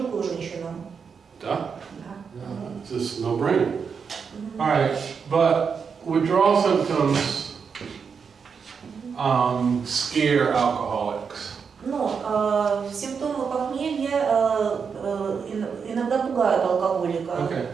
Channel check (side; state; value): left; quieter; 6.1 dB